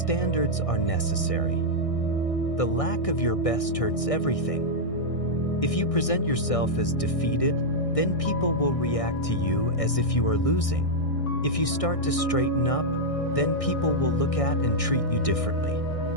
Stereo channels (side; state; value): right; late; 1.6 ms